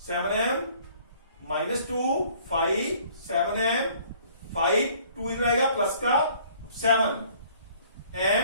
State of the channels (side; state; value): both; inverted; correlation -0.57